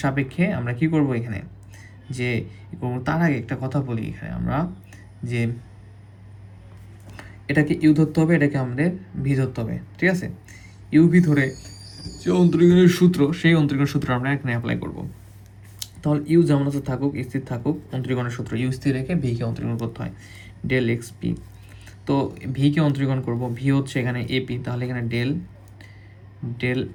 সাপেক্ষে আমরা কি করব এখানে, যে তার আগে একটা কথা বলি এখানে আমরা, যে এটাকে ইউ ধরতে হবে, এটাকে আমাদের ভি ধরতে হবে। ঠিক আছে, ইউ ভি ধরে যে অন্তরীকরণের সূত্র, সেই অন্তরীকরণের সূত্র আমরা এখানে অ্যাপ্লাই করব। তাহলে ইউ যেমন আছে থাকুক, স্থির থাকুক, অন্তরীকরণের সূত্র ইউ স্থির রেখে ভিকে অন্তরীকরণ করতে হয়, ডেল এক্স পি। তো ভিকে অন্তরীকরণ করব, ভি হচ্ছে এখানে এপি, তাহলে এখানে ডেল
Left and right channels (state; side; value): identical; both; correlation 1.00